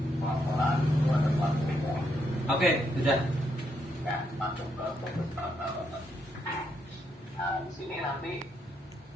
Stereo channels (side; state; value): both; normal; correlation 0.77